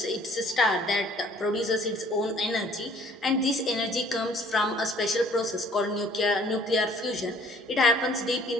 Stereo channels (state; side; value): normal; both; correlation 0.56